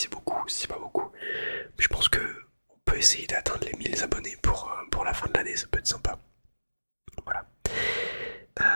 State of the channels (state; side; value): inverted; both; correlation -1.00